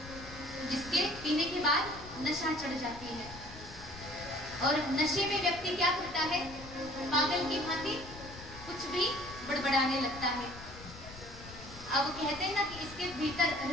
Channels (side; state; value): left; noise; rumble, 15 dB below the sound